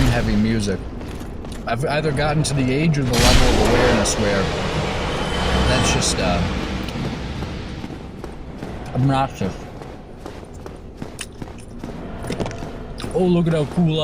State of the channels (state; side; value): identical; both; correlation 1.00